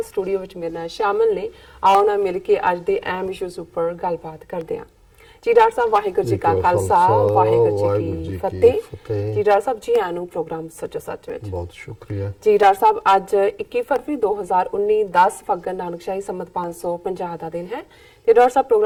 ਸਟੂਡੀਓ ਵਿੱਚ ਮੇਰੇ ਨਾਲ ਸ਼ਾਮਲ ਨੇ। ਆਓ ਨਾ ਮਿਲ ਕੇ ਅੱਜ ਦੇ ਅਹਿਮ ਇਸ਼ੂਜ਼ ਉੱਪਰ ਗੱਲਬਾਤ ਕਰਦੇ ਹਾਂ। ਜੀ ਡਾਕਟਰ ਸਾਹਿਬ ਵਾਹਿਗੁਰੂ ਜੀ ਕਾ ਖਾਲਸਾ ਵਾਹਿਗੁਰੂ ਜੀ ਕੀ ਫਤਿਹ। ਜੀ ਡਾਕਟਰ ਸਾਹਿਬ ਜੀ ਆਨੂੰ ਪ੍ਰੋਗਰਾਮ ਸੱਚੋ ਸੱਚ ਵਿੱਚ ਬਹੁਤ ਸ਼ੁਕਰੀਆ। ਜੀ ਡਾਕਟਰ ਸਾਹਿਬ ਅੱਜ 21 ਫਰਵਰੀ 2019 10 ਫੱਗਣ ਨਾਨਕਸ਼ਾਹੀ ਸੰਮਤ 550 ਦਾ ਦਿਨ ਹੈ। ਤੇ ਡਾਕਟਰ ਸਾਹਿਬ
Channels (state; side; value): identical; both; correlation 1.00